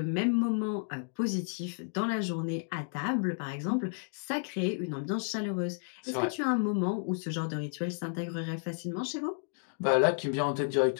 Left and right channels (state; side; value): silent; right; digital silence